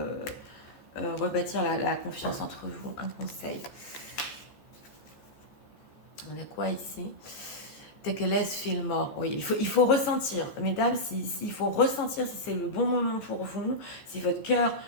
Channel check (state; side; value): late; right; 14 ms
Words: rebâtir la confiance entre vous. Un conseil. On a quoi ici? Take a less, feel more. Oui, il faut ressentir. Mesdames, il faut ressentir si c'est le bon moment pour vous, si votre cœur